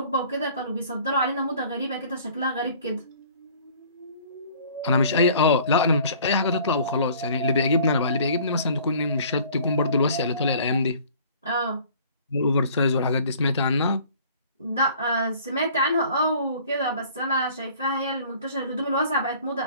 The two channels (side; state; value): both; inverted; correlation -0.52